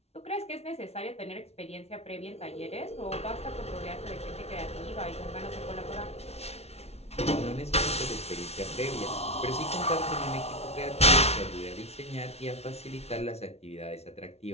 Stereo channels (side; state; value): right; late; 0.31 ms